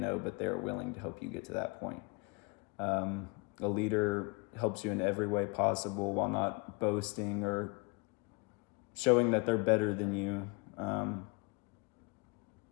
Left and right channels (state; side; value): quieter; right; 28.7 dB